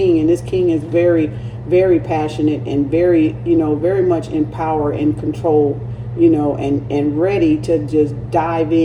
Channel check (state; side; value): identical; both; correlation 1.00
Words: And this king is very, very passionate and very, you know, very much in power and control, you know, and ready to just dive